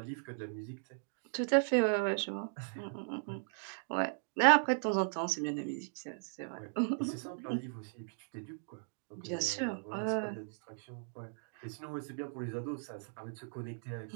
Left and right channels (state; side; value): silent; left; digital silence